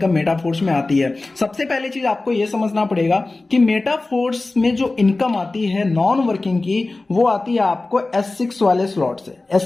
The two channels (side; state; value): right; quieter; 3.2 dB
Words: मेटाफोर्स में आती है। सबसे पहली चीज आपको यह समझना पड़ेगा कि मेटाफोर्स में जो इनकम आती है नॉन वर्किंग की, वो आती है आपको S6 वाले स्लॉट से।